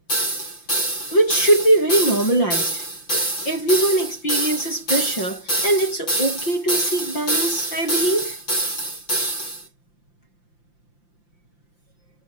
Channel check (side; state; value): right; late; 5.8 ms